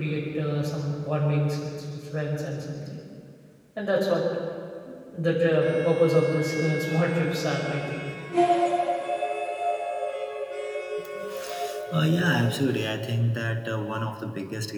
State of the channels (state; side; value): identical; both; correlation 1.00